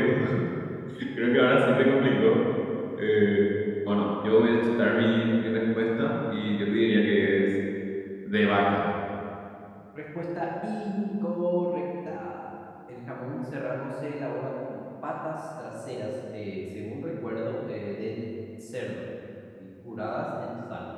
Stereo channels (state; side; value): identical; both; correlation 1.00